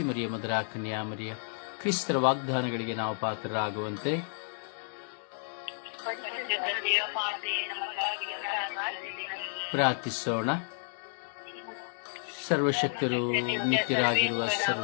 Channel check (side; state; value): right; silent; digital silence